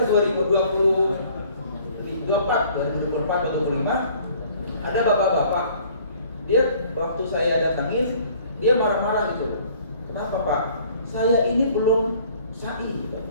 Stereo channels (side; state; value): both; inverted; correlation -0.55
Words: 2024 atau 2025 ada bapak-bapak, dia waktu saya datangin dia marah-marah gitu. Kenapa Pak? Saya ini belum sa'i.